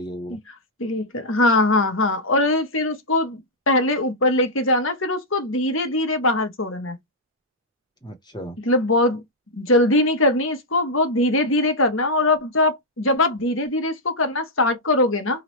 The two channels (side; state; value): both; normal; correlation -0.06